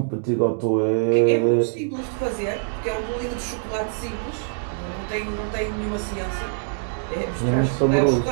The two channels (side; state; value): left; silent; digital silence